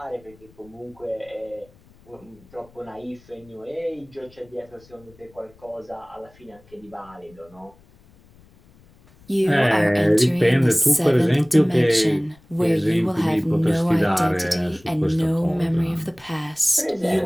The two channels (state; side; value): noise; left; rumble, 28 dB below the sound